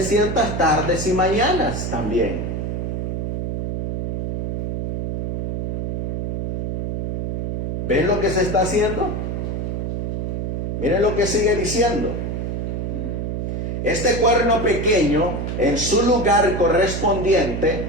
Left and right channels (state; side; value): noise; right; hum, 2 dB below the sound